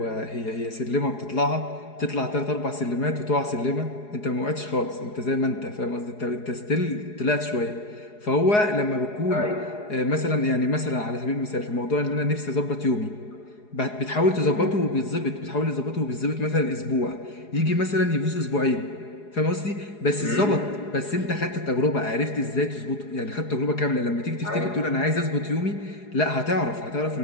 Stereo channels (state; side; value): late; right; 4.8 ms